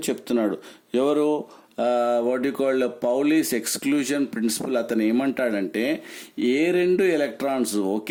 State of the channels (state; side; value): identical; both; correlation 1.00